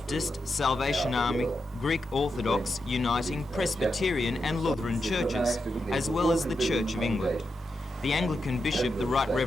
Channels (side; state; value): both; normal; correlation 0.87